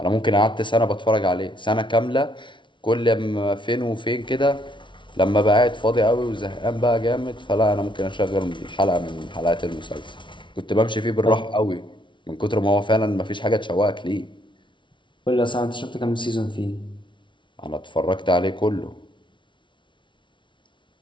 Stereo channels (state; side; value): late; right; 0.24 ms